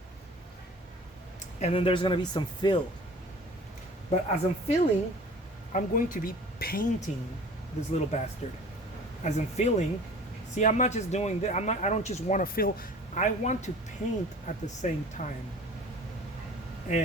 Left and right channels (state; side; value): normal; both; correlation 0.45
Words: And then there's going to be some fill. But as I'm filling, I'm going to be painting this little bastard. As I'm filling, see, I'm not just doing that. I don't just want to fill. I want to paint at the same time.